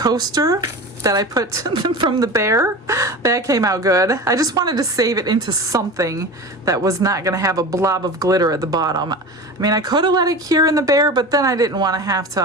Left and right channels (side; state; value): both; normal; correlation 0.31